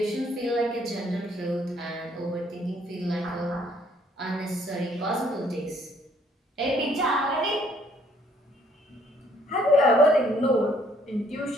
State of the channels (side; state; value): both; normal; correlation 0.64